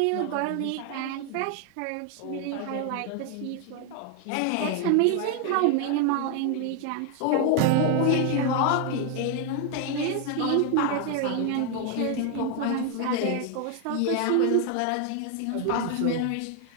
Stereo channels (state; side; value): different; both; correlation 0.01